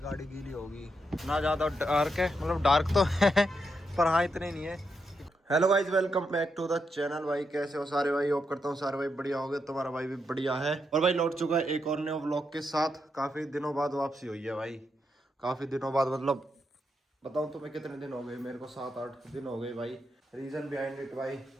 गीली होगी, ना ज़्यादा डार्क है, मतलब डार्क तो है पर हाँ इतने नहीं है। Hello guys, welcome back to the channel. भाई कैसे हो सारे भाई, होप करता हूँ सारे भाई बढ़िया हो गए, तुम्हारा भाई भी बढ़िया है। और भाई लौट चुका है एक और नए व्लॉग के साथ। काफ़ी दिनों बाद वापसी हुई है भाई, काफ़ी दिनों बाद, मतलब बताऊँ तुम्हें कितने दिन हो गए, मेरे को 7-8 दिन हो गए भाई। रीज़न बिहाइंड इट भाई,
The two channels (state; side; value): normal; both; correlation 0.82